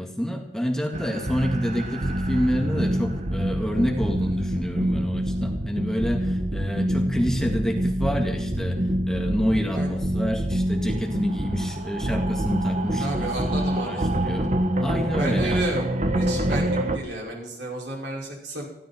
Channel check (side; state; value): both; normal; correlation 0.85